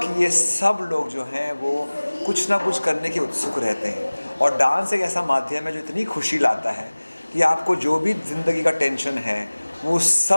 ये सब लोग जो हैं वो कुछ ना कुछ करने के उत्सुक रहते हैं, और डांस एक ऐसा माध्यम है जो इतनी खुशी लाता है कि आपको जो भी ज़िंदगी का टेंशन है वो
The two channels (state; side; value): inverted; both; correlation -1.00